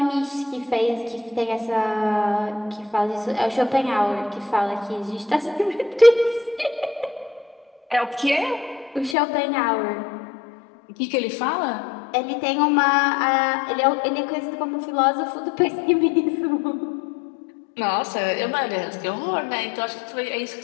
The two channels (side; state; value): right; drops out; at 9.2 s